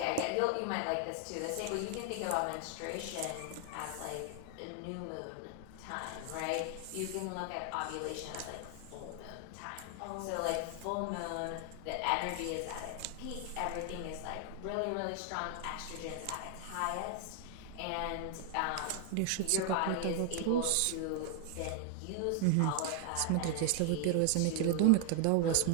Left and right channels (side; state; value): both; different; correlation 0.00